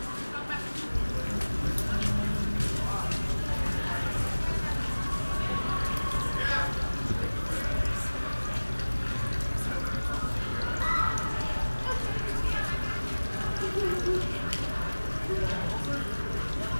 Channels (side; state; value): both; inverted; correlation -1.00